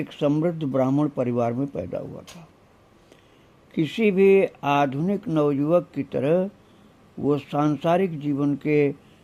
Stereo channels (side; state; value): both; identical; correlation 1.00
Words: समृद्ध ब्राह्मण परिवार में पैदा हुआ था। किसी भी आधुनिक नवयुवक की तरह वो सांसारिक जीवन के